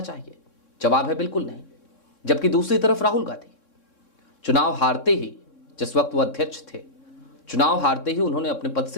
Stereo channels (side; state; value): right; late; 3.6 ms